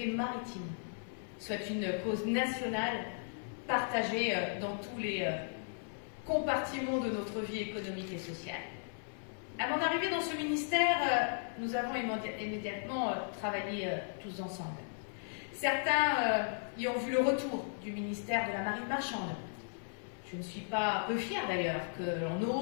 maritime soit une cause nationale partagée dans tous les compartiments de notre vie économique et sociale. À mon arrivée dans ce ministère, nous avons immédiatement travaillé tous ensemble. Certains y ont vu le retour du ministère de la Marine marchande. Je ne suis pas peu fière d'ailleurs que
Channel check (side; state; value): right; silent; 54 dB below the other